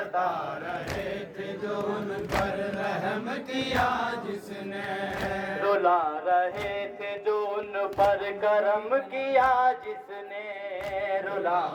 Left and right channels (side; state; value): both; identical; correlation 1.00